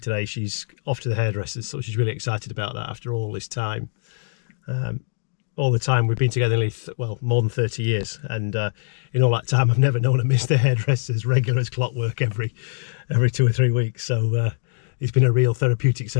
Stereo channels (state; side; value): silent; right; digital silence